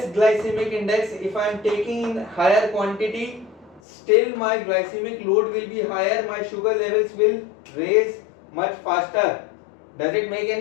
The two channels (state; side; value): drops out; right; at 3.8 s